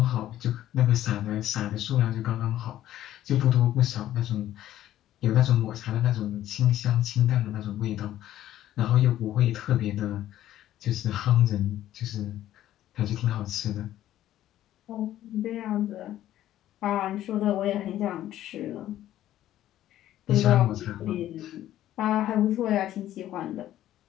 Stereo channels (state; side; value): quieter; right; 12.9 dB